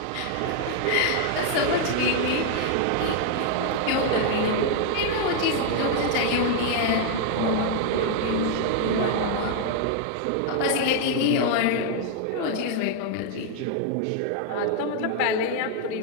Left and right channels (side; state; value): both; different; correlation 0.00